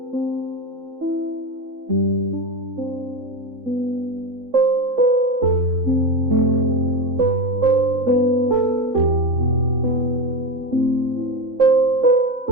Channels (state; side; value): late; left; 3.6 ms